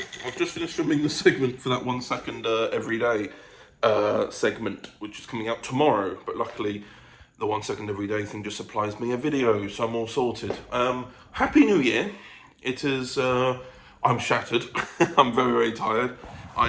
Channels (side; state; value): both; identical; correlation 1.00